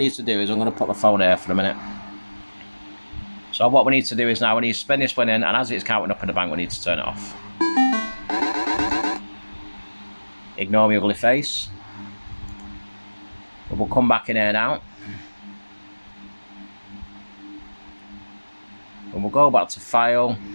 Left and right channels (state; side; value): inverted; both; correlation -1.00